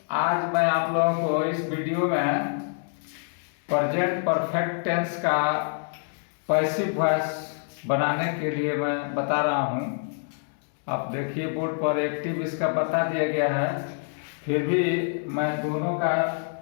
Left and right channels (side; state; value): right; silent; digital silence